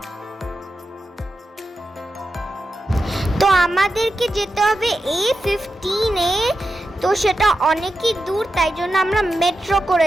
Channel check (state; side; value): normal; both; correlation 0.90